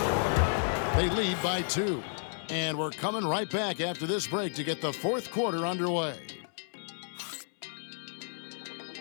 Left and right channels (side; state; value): right; silent; 57 dB below the other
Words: They lead by 2. And we're coming right back after this break to get the 4th quarter underway.